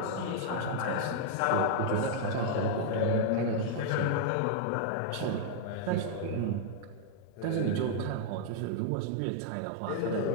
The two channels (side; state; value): both; different; correlation -0.01